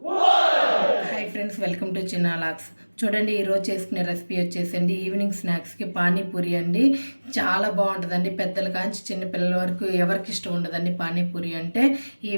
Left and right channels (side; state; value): both; inverted; correlation -1.00